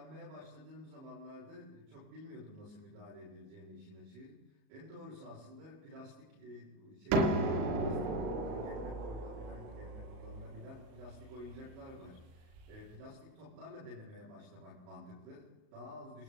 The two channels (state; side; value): late; left; 38 ms